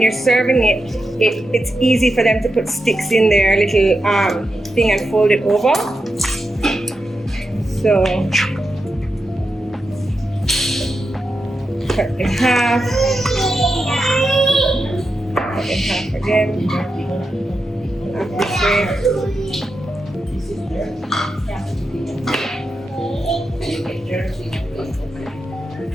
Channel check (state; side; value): normal; both; correlation 0.88